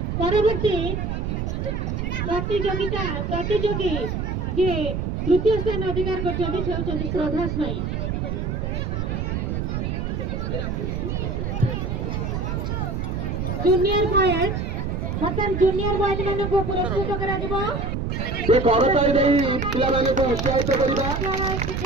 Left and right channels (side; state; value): right; noise; rumble, 2 dB below the sound